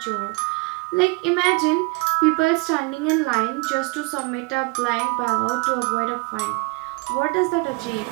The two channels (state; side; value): quieter; left; 27.9 dB